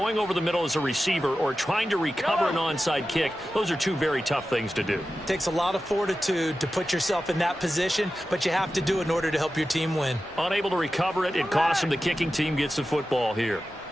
over the middle as a receiver or trying to recover an onside kick, those are two very tough things to do. It takes a lot of fortitude to put yourself in that position, but you have to do it in order to help your team win. Unable to recover it, it costs them. The kicking team gets the football here.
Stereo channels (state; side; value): normal; both; correlation 0.93